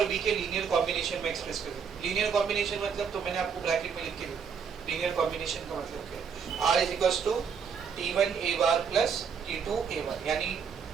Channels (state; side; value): quieter; left; 6.5 dB